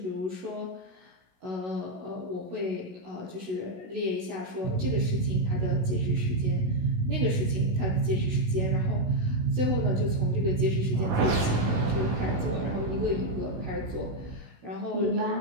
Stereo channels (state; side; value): late; left; 16 ms